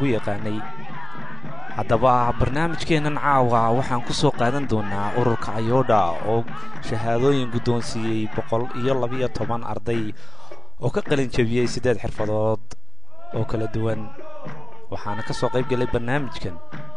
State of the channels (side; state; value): both; normal; correlation 0.98